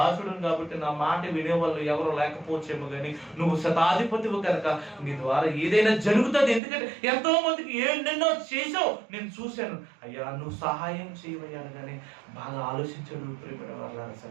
కాబట్టి నా మాట వినేవాళ్ళు ఎవరు లేకపోవచ్చేమో కానీ నువ్వు శతాధిపతివు కనుక నీ ద్వారా ఏదైనా జరుగుతుంది. ఎందుకంటే ఎంతో మందికి ఎన్నెన్నో చేసావు, నేను చూశాను. అయ్యా నువ్వు సహాయం చేయమయ్యాను కానీ బాగా ఆలోచించాడు ప్రేమ వాళ్ళ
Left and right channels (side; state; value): left; drops out; at 6.6 s